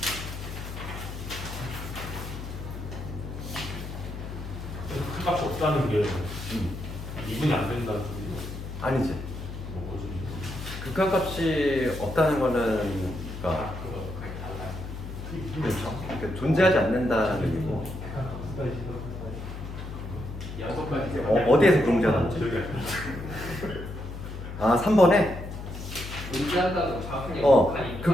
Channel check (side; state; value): left; noise; hum, 9 dB below the sound